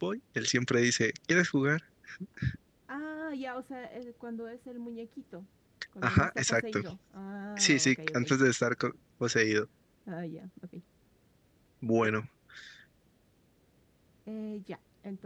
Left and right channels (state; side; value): identical; both; correlation 1.00